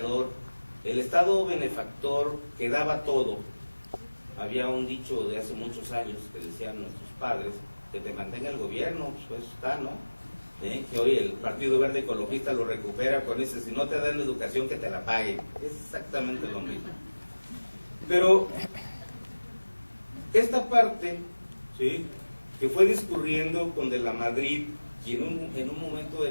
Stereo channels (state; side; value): inverted; both; correlation -1.00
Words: el Estado benefactor que daba todo. Había un dicho de hace muchos años que decían nuestros padres, que te mantenga el gobierno, pues está, ¿no? Que hoy el Partido Verde Ecologista lo recupera con ese, si no te dan la educación que te la paguen. Es exactamente lo mismo. Pero esta parte, ¿sí?, que fue discurriendo con De la Madrid, y en un momento